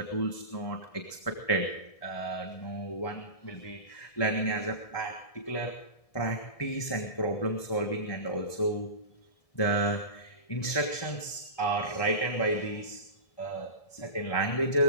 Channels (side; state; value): right; late; 1.7 ms